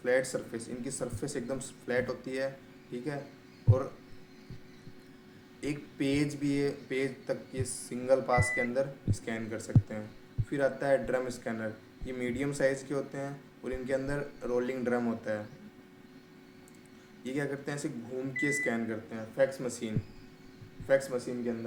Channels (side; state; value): both; identical; correlation 1.00